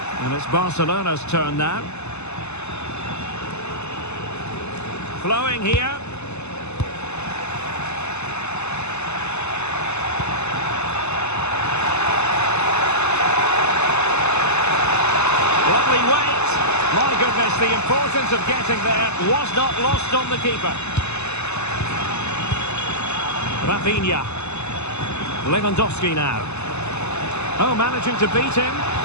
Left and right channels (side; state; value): right; late; 0.81 ms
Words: And it's Barcelona's turn now. Flowing here. Lovely weight. My goodness, the importance of getting there was not lost on the keeper. Rafinha. Lewandowski now. Oh, managing to beat him.